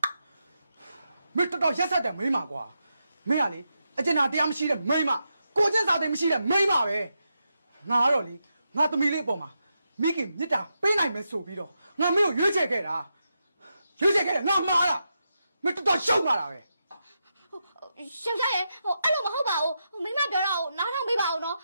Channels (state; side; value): inverted; both; correlation -0.86